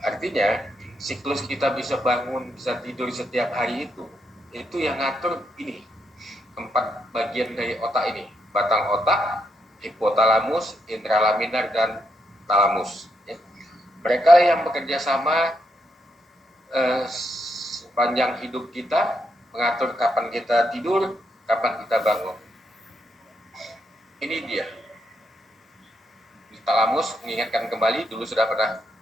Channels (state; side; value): normal; both; correlation 0.79